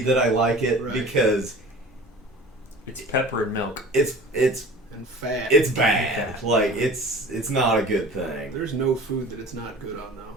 that I like it because it's pepper and milk. It's and fat. It's bad. It's not a good thing. There's no food that it's not good on though.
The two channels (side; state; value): both; normal; correlation 0.42